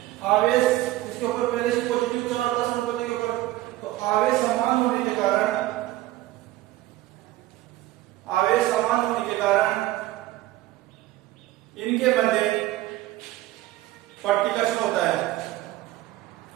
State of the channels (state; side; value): quieter; left; 16.3 dB